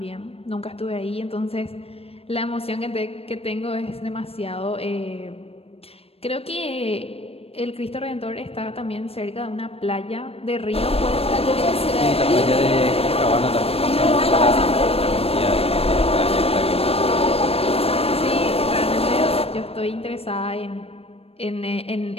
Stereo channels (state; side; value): late; right; 0.28 ms